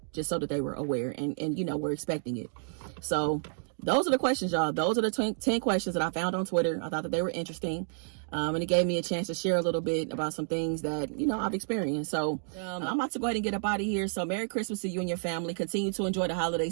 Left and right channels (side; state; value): left; silent; digital silence